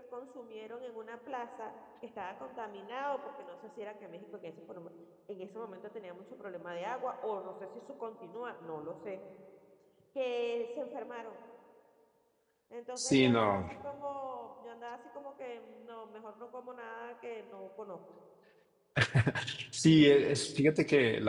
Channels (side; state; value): both; identical; correlation 1.00